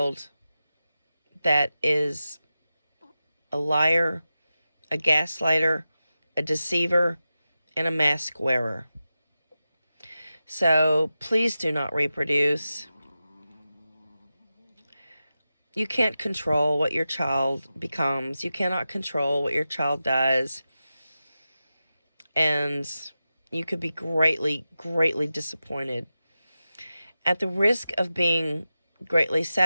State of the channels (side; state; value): both; inverted; correlation -0.93